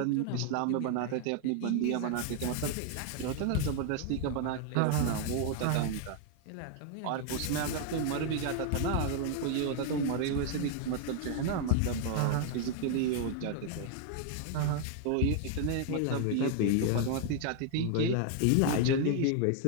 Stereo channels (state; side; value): different; both; correlation 0.00